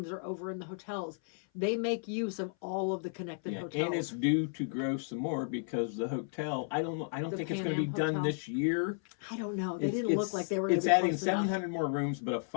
are over in the hotels. They make use of all of the connected hotels. And it's due to grow some more because the hotel, I don't think it's going to be done this year. I don't know. They didn't look like they were going to be adding 700 more rooms, but a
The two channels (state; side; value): silent; right; 56 dB below the other